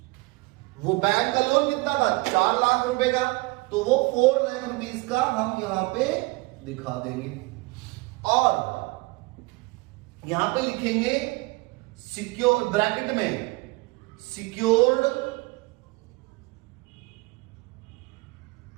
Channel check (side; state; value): left; quieter; 24.4 dB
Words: वो बैंक का लोन कितना था? 4 लाख रुपए का। तो वो 4 लाख रुपीस का हम यहां पे दिखा देंगे और यहां पे लिखेंगे सिक्योर, ब्रैकेट में secured,